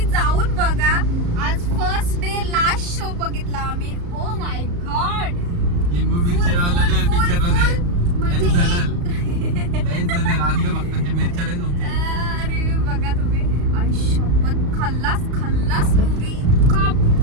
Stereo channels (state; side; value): late; left; 34 ms